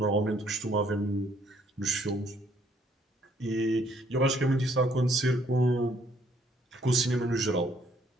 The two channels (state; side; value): normal; both; correlation 0.65